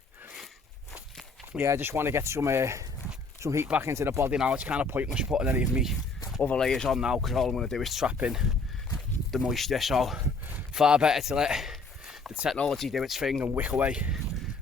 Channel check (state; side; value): quieter; right; 3.6 dB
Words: yeah, I just want to get some heat back into the body now. It's kind of pointless putting any of me other layers on now because all I'm going to do is trap in the moisture. So far better to let the technology do its thing and wick away